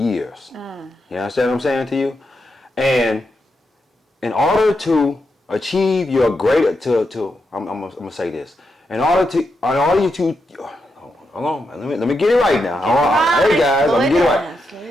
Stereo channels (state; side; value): normal; both; correlation 0.85